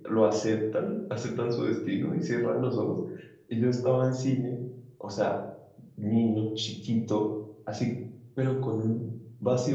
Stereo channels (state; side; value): identical; both; correlation 1.00